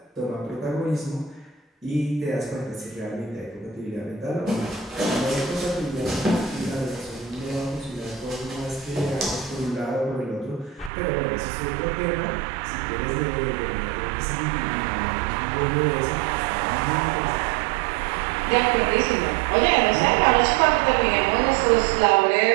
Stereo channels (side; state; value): left; drops out; at 10.9 s